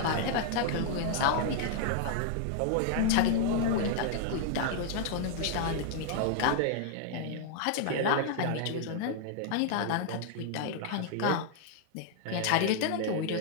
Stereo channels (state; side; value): different; both; correlation -0.01